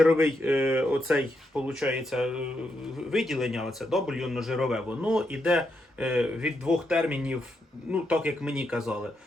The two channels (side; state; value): both; normal; correlation 0.82